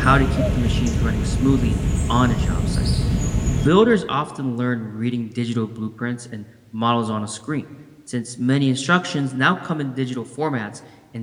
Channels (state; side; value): identical; both; correlation 1.00